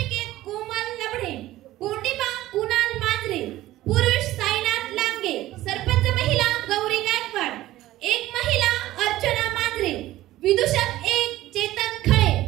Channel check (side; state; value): left; quieter; 15.6 dB